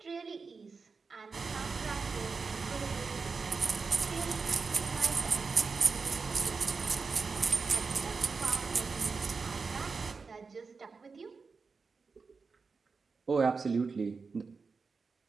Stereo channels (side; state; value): left; quieter; 4.7 dB